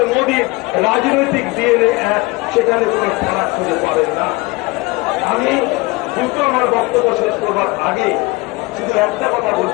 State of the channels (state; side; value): quieter; right; 23.3 dB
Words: মোদীর রাজনৈতিক ডিএনএ এক, সেখানে কোনো ফারাক খুঁজে পাবেন না। আমি দ্রুত আমার বক্তব্য শেষ করবার আগে শুধু একটা কথা